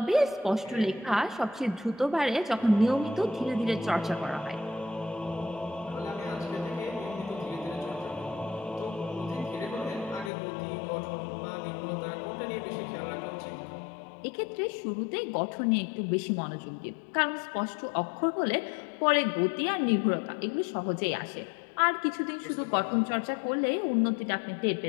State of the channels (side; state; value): right; drops out; at 10.3 s